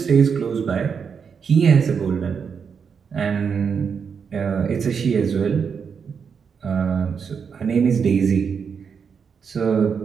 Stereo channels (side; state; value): left; quieter; 6.4 dB